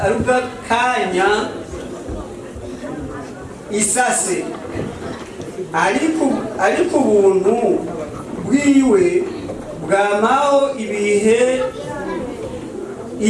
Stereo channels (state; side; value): identical; both; correlation 1.00